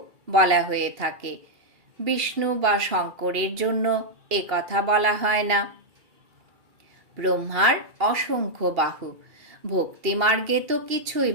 বলা হয়ে থাকে। বিষ্ণু বা শঙ্করের জন্য এ কথা বলা হয় না। ব্রহ্মার অসংখ্য বাহু। ভক্তিমার্গে তো কিছুই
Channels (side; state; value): left; late; 2.8 ms